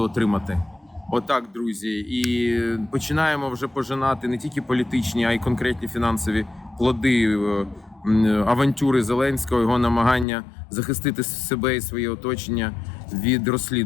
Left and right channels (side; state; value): right; drops out; at 10.2 s